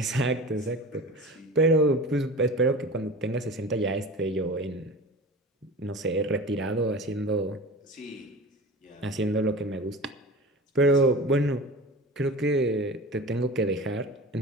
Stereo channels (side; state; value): both; normal; correlation 0.35